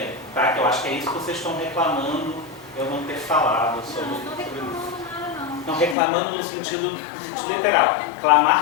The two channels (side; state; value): right; drops out; at 6.0 s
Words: Tá? Que eu acho que é isso que vocês estão reclamando eu não ter falado sobre. Não estou reclamando nada, não. Não reclamando no sentido literal,